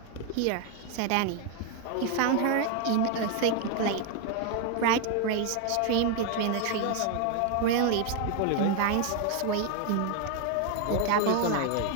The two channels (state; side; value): different; both; correlation 0.01